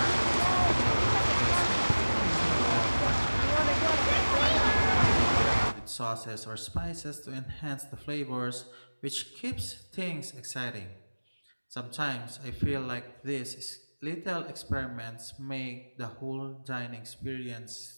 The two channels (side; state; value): both; inverted; correlation -1.00